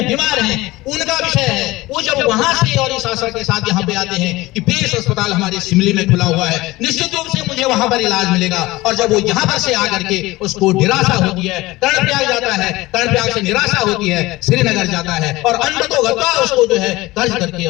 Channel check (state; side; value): quieter; right; 19.6 dB